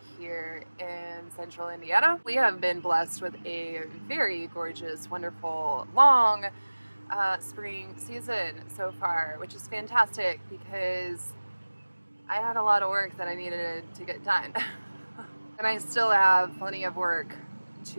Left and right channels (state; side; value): inverted; both; correlation -1.00